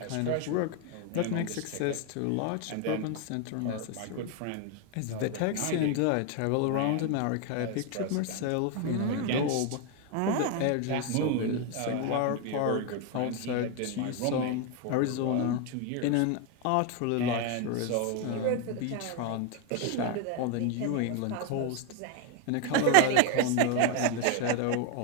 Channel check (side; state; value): both; different; correlation 0.01